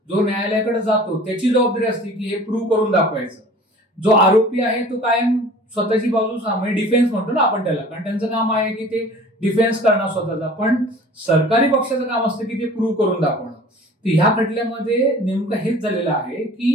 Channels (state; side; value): normal; both; correlation 0.45